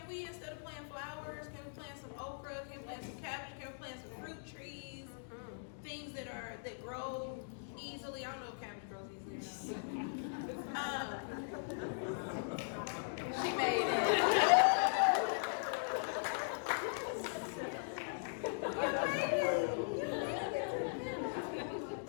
we, instead of planting flowers, can we plant some okra? Can we plant some cabbage? Can we plant some fruit trees? Things that grow easily. I don't know if cabbage grows easily or not. She made it.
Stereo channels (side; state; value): right; silent; digital silence